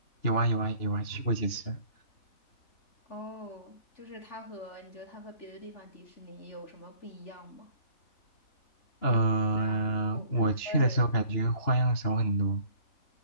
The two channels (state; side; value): late; right; 2.9 ms